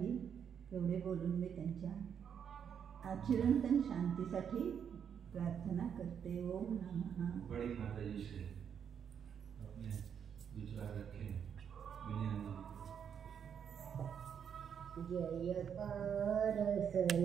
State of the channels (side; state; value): left; quieter; 7.9 dB